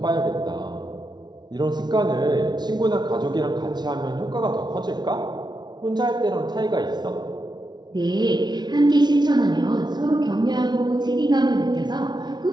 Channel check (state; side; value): late; left; 0.20 ms